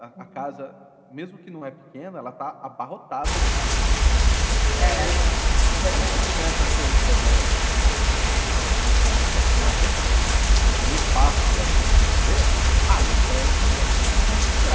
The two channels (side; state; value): both; identical; correlation 1.00